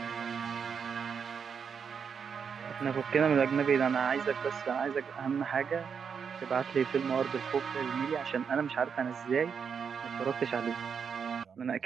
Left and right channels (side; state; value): left; quieter; 6.6 dB